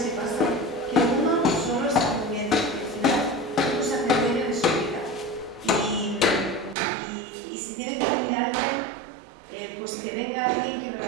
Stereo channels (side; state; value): left; drops out; at 6.8 s